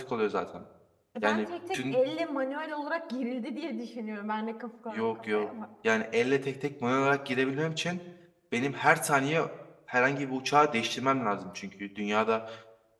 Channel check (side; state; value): both; identical; correlation 1.00